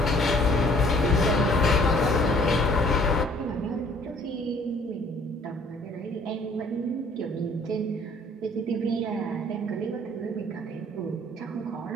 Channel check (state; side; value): normal; both; correlation 0.57